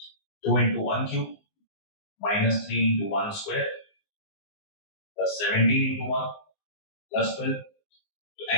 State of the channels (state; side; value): late; right; 19 ms